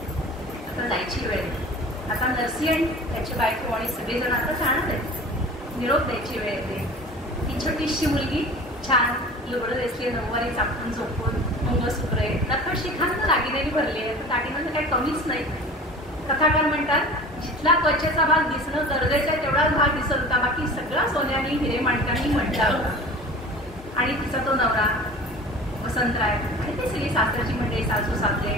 आता जायची वेळ. आता नरसी आणि त्याची बायको आणि सगळेजण आता जाणार आहेत, निरोप द्यायची वेळ येते. ही छोटीशी मुलगी छान लुगडं दिसली, नऊवारी चापून झोपून, मंगळसूत्रे, नखर शिखांना दागिनेनी भरली आहे, दागिन्यांचं काही कमीच नाही. कथाकार म्हणतात जिथला त्वचेचा भाग दिसणं गरजेचं आहे तेवढाच भाग दिसत होता, बाकी सगळा सोन्याने हिरे माणकांनी म्हटला होता. आणि तिचा तो नवरा वसंतराय आणि ते सगळी सासरची मंडळी, सासू सासरे,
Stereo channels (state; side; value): normal; both; correlation 0.40